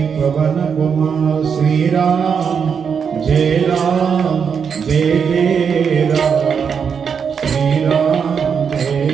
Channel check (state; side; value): quieter; left; 6.7 dB